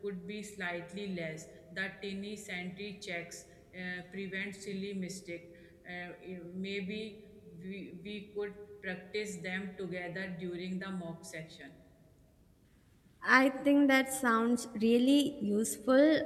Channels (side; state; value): both; identical; correlation 1.00